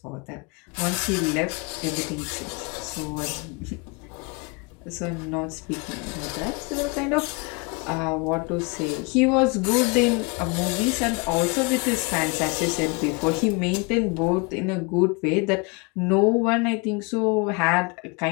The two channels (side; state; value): right; quieter; 30.4 dB